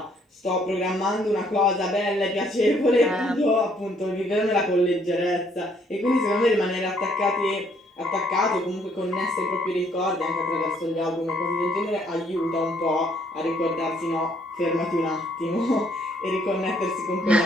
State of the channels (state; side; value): normal; both; correlation 0.66